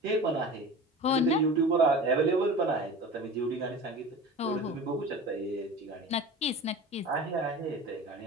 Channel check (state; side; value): normal; both; correlation 0.35